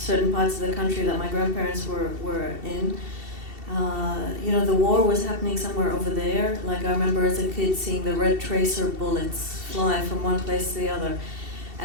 parts of the country that my grandparents were in, the war was happening somewhere over there. Like, I remember as a kid seeing the red tracer bullets fly from one place to the other.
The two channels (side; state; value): left; late; 2.7 ms